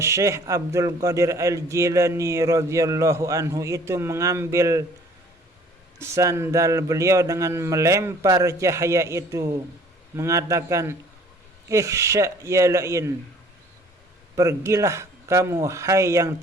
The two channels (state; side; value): normal; both; correlation 0.54